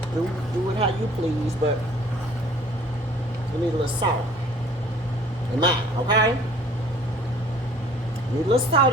do it how you please, but you need a little salt in mine, okay? Need a little salt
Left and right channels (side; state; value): both; normal; correlation 0.54